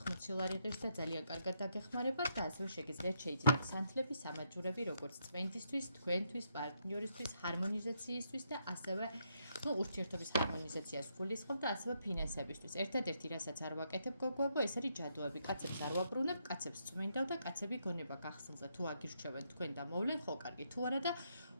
ლარი ღირს და ძალიან კარგად დაგეხმარებათ და ასევე შეგიძლიათ შეიძინოთ სანთლები, სამაჯურები, როგორც წვენდისთვის, თქვენთვის, პარტნიორისთვის, ჰარმონიზაციისთვის და ასევე ურთიერთობის ჰარმონიზაციას გულისხმობ და ასევე ფინანსებისთვის. ერთადერთი რასაც არ ვაკეთებ გოგოებო, ეს არის ჯადოები. კაცებს არ ვაბრუნებ, კაცებს წვენდავ და კაცები გონება გახსნილზე თუ აგირჩევენ თქვენ და მოვლენ, ხო კარგი, თუ არა და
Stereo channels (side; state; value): both; inverted; correlation -0.77